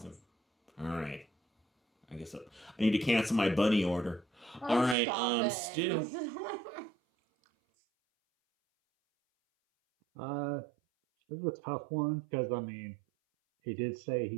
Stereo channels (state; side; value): drops out; left; at 5.0 s